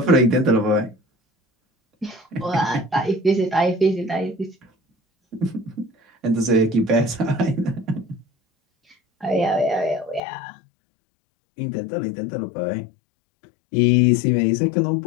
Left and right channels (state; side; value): drops out; right; at 10.2 s